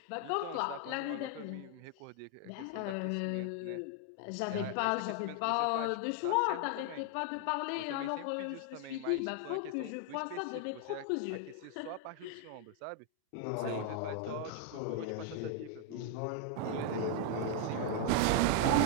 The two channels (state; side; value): different; both; correlation 0.00